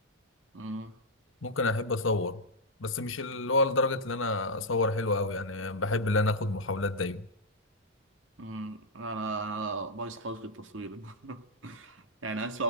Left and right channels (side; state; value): both; normal; correlation -0.04